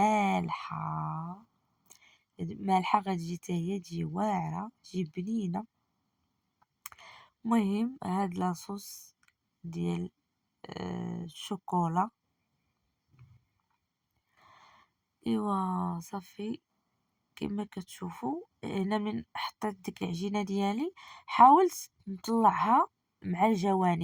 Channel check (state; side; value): identical; both; correlation 1.00